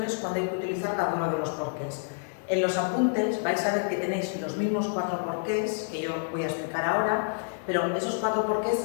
cuándo hay que utilizar cada uno de los porqués. En los apuntes vais a ver que tenéis los mismos 4 porqués que yo voy a explicar ahora, pero esos 4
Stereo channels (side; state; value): right; silent; digital silence